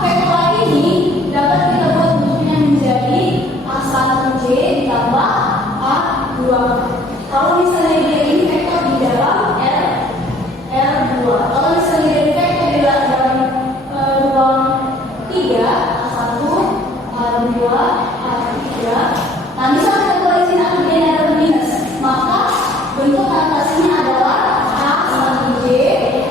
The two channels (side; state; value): both; normal; correlation 0.56